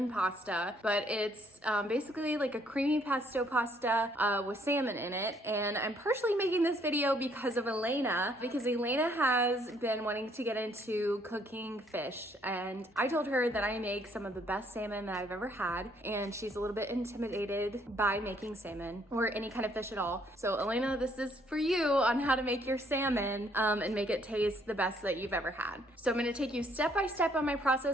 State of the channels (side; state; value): both; normal; correlation 0.66